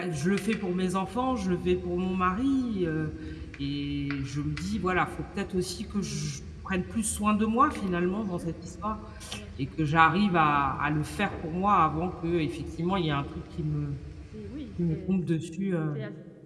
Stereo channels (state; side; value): identical; both; correlation 1.00